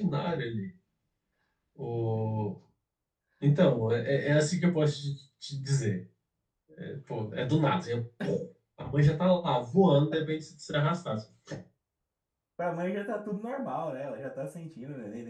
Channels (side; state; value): both; identical; correlation 1.00